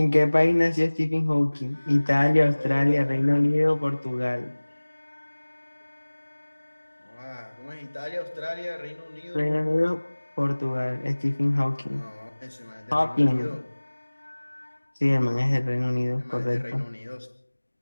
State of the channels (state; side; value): inverted; both; correlation -1.00